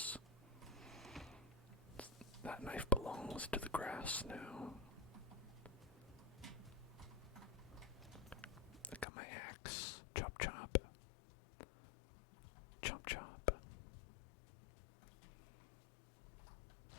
That knife belongs to the grass now. I got my axe. Chop chop. Chop chop.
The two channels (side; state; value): right; drops out; at 9.1 s